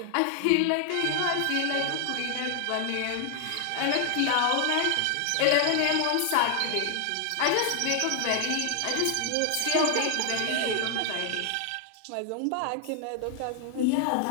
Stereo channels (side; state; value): both; different; correlation 0.00